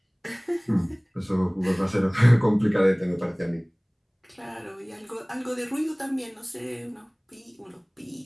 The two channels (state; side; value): identical; both; correlation 1.00